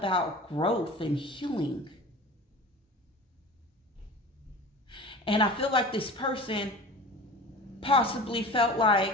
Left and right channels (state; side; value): normal; both; correlation 0.37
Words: growth and healing. And I feel like this person possibly felt